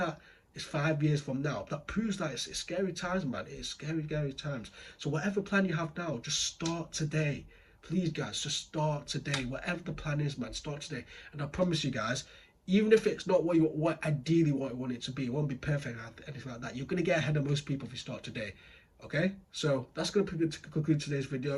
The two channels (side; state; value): both; identical; correlation 1.00